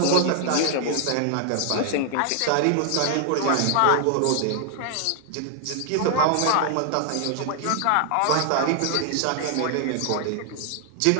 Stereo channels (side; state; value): both; different; correlation 0.00